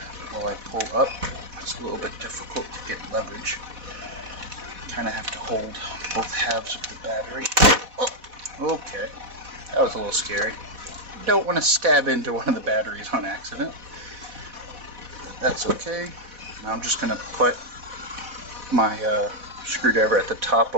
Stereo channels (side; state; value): left; late; 4.1 ms